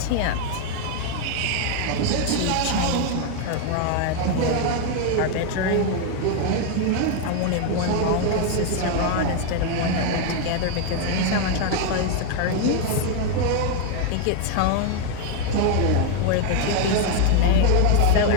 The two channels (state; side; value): different; both; correlation 0.01